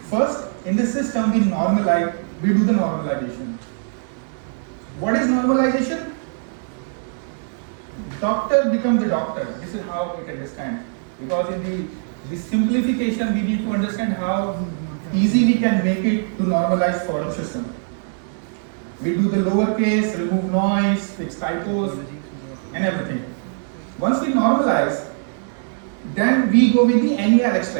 first in the system we do the normalization. What is normalization? Doctor becomes the doctor. This is how it understands. Because in the simplification, we need to understand how easy we can make it to normalize for a system. We do the lowercase, remove noise, fix typos, and everything. Once we normalize, then we go with the NER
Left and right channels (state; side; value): silent; left; digital silence